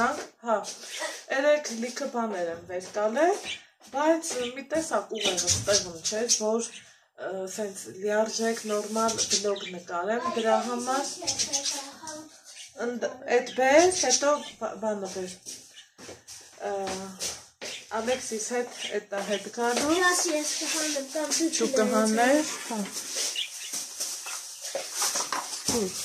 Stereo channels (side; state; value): both; identical; correlation 1.00